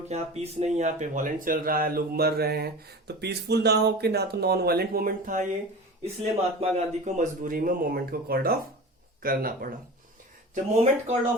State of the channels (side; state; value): both; normal; correlation 0.33